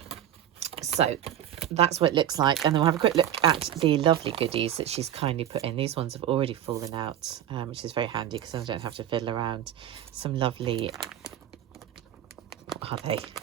So that's what it looks like. And then we'll have a quick look at the lovely goodies that she's kindly put in. These ones have already fallen out, which is very handy because I don't have to fiddle around. Some lovely, what are they?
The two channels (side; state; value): left; quieter; 11.1 dB